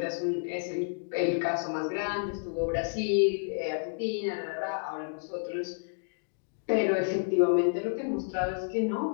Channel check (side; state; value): right; silent; digital silence